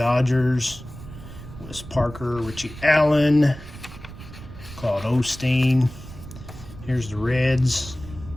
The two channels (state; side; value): noise; right; rumble, 15 dB below the sound